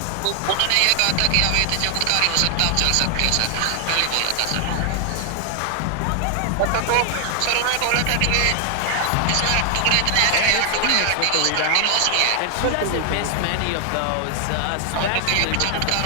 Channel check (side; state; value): both; different; correlation 0.00